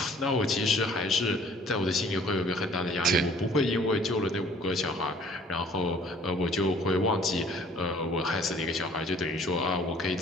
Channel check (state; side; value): normal; both; correlation 0.55